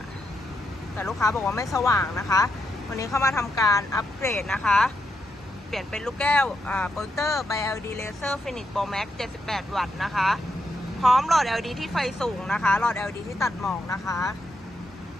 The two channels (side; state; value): both; normal; correlation 0.82